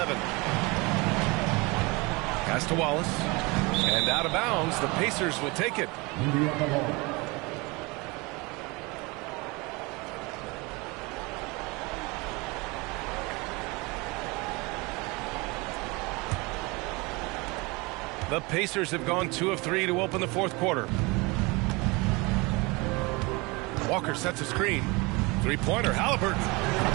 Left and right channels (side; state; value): left; quieter; 25.8 dB